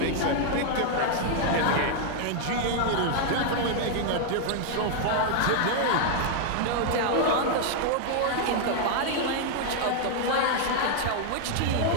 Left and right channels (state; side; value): different; both; correlation 0.00